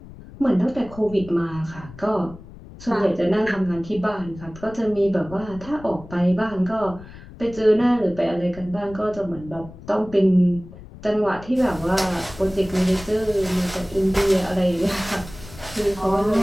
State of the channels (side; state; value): left; noise; rumble, 17 dB below the sound